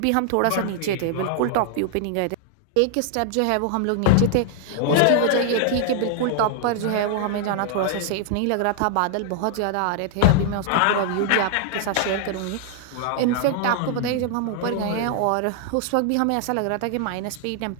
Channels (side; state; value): both; different; correlation 0.00